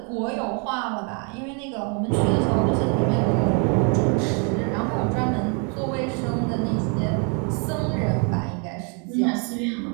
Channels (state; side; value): quieter; left; 37.2 dB